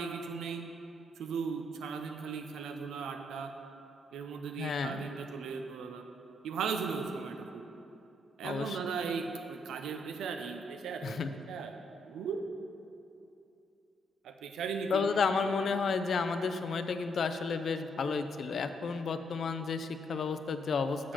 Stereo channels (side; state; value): both; normal; correlation 0.73